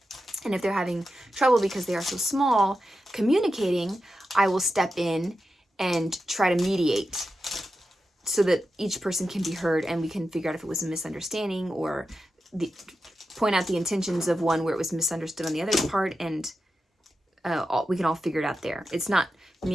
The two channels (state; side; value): normal; both; correlation 0.90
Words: And if they're having trouble because they are so small communicating, I will step in and try to mediate so that each person can be heard and we can figure out if it was a misunderstanding or point out the intentions of one where it was misunderstood on the other part, and we can all figure it out there. It's not